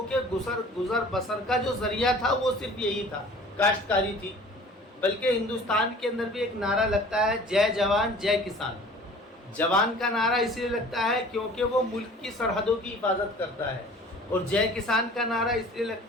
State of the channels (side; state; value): both; normal; correlation 0.47